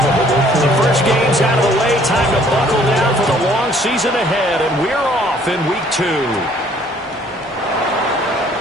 The first game's out of the way. Time to buckle down for the long season ahead, and we're off in week 2.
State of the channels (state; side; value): normal; both; correlation 0.60